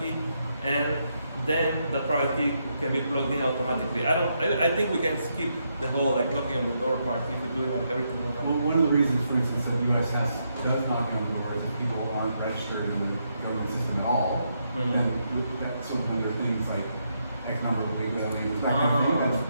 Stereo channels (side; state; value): both; inverted; correlation -0.79